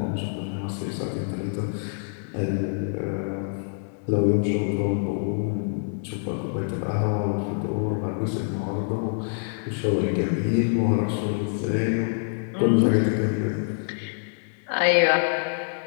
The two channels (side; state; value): right; silent; digital silence